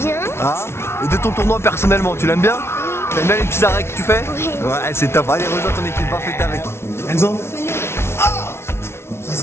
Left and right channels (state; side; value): late; right; 0.12 ms